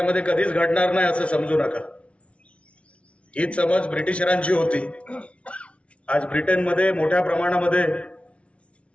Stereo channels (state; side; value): late; right; 0.061 ms